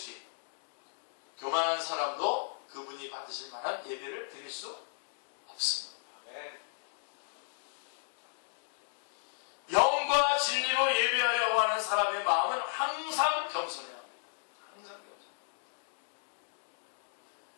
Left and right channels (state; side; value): silent; right; digital silence